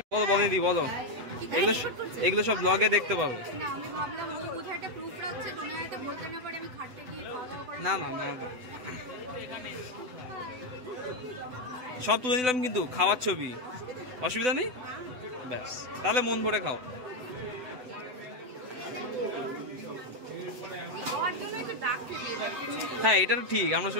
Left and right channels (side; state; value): left; late; 7.9 ms